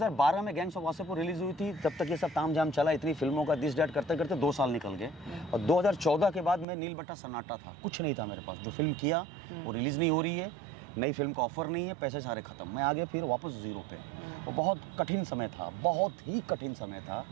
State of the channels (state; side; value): drops out; left; at 6.7 s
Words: में गैंग्स ऑफ वासेपुर रिलीज हुई थी, तब तक ये सब तामझाम चला, इतनी फिल्मों का दिस डैट करते करते 2 साल निकल गए। और 2014 के बाद मैं नील बट्टा सन्नाटा था, कुछ नहीं था मेरे पास। जो फिल्म किया वो रिलीज़ नहीं हो रही है, नई फिल्म का ऑफर नहीं है, पैसे सारे खत्म। मैं आगे फिर वापस जीरो पे। वो बहुत कठिन समय था, बहुत ही कठिन समय था।